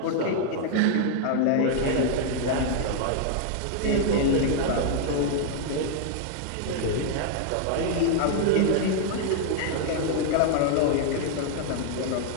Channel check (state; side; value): different; both; correlation -0.01